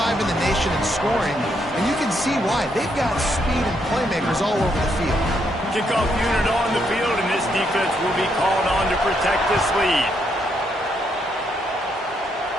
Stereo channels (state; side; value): normal; both; correlation 0.76